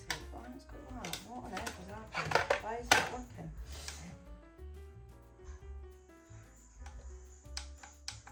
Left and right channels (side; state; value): both; identical; correlation 1.00